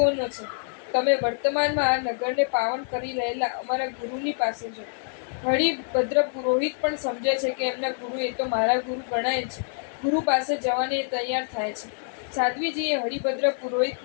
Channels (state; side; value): silent; right; 61 dB below the other